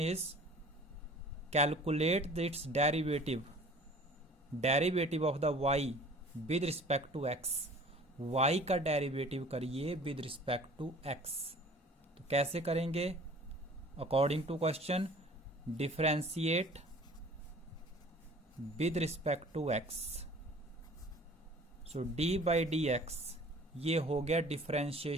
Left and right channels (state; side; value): normal; both; correlation 0.48